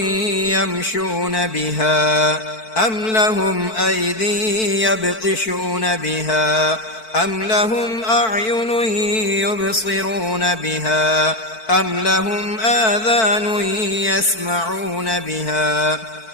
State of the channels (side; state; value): right; late; 4.5 ms